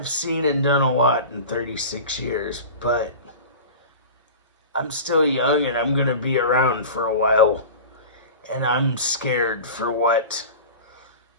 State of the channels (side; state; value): both; inverted; correlation -0.33